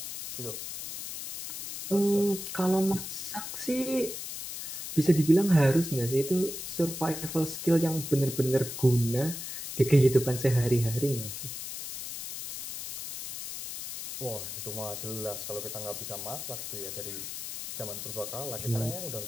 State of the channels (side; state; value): left; noise; hiss, 8 dB below the sound